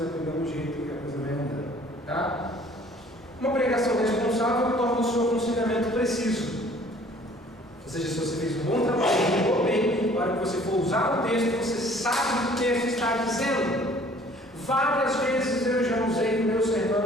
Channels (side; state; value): both; normal; correlation 0.54